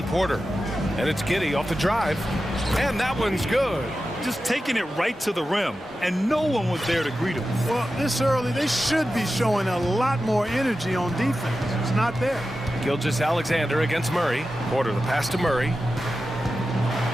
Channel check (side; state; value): both; normal; correlation 0.92